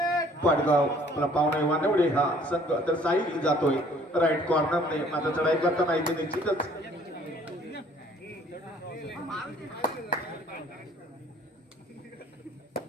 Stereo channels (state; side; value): normal; both; correlation 0.57